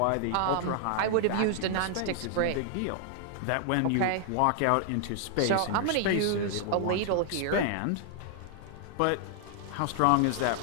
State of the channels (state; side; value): different; both; correlation -0.01